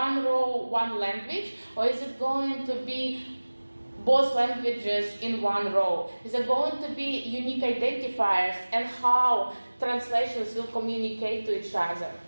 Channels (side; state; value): both; inverted; correlation -1.00